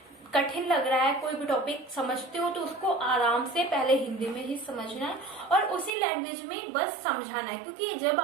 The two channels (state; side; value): drops out; left; at 5.9 s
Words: कठिन लग रहा है, कोई भी टॉपिक समझते हो तो उसको आराम से पहले हिंदी में ही समझना है और उसी लैंग्वेज में बस समझाना है। क्योंकि जब